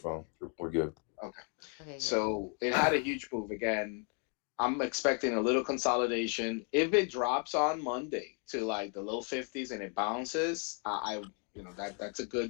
We're good. Okay. Okay, good. So it had a huge move again. I'm expecting a little consolidation. If it drops on Monday to like the low 50s and it bounces, that's a good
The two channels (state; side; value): quieter; right; 39.8 dB